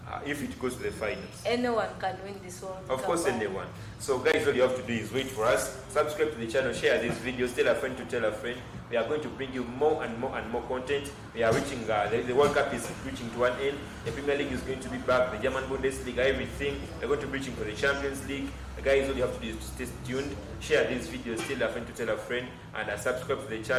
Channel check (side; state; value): both; identical; correlation 1.00